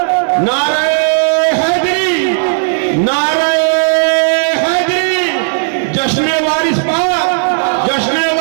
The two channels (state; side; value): silent; left; digital silence